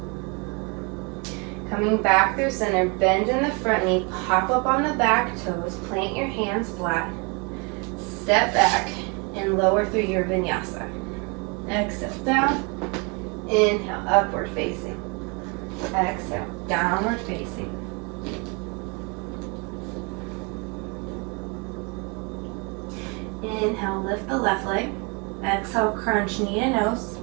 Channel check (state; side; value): quieter; left; 31.8 dB